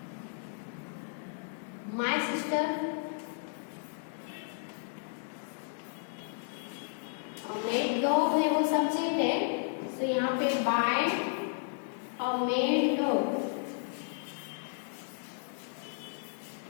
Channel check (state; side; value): silent; right; digital silence